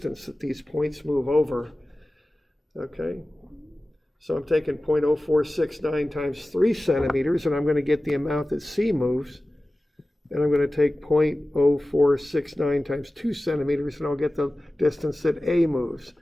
that these points move over, okay? So I'm taking 0.0469 times 3 centimeters, and I'm going to get the amount that C moves. And I'm going to take 0.0469 times 2 centimeters, and I'll get the distance that A moves.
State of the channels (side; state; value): both; normal; correlation 0.96